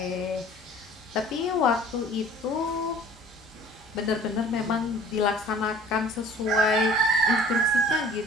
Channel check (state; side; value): normal; both; correlation 0.49